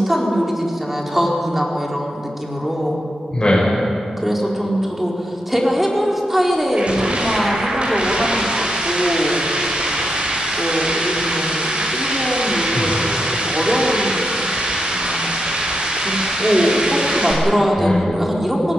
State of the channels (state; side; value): normal; both; correlation 0.85